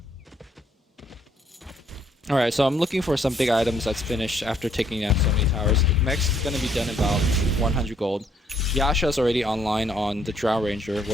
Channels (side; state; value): both; normal; correlation 0.68